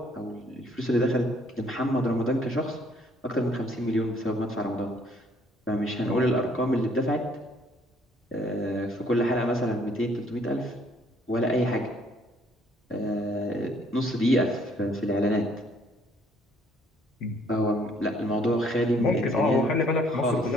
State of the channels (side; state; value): both; normal; correlation 0.63